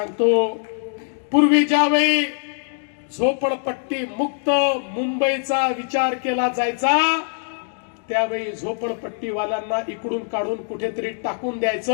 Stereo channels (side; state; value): right; silent; digital silence